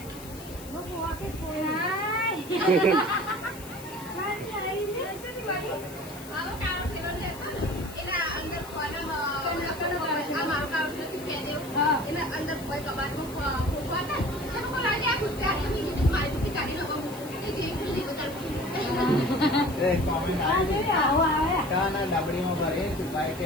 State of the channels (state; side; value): noise; left; hiss, 17 dB below the sound